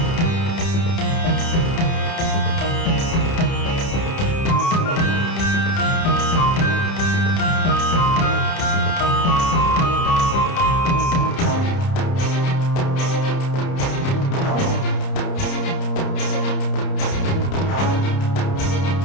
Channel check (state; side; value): late; right; 30 ms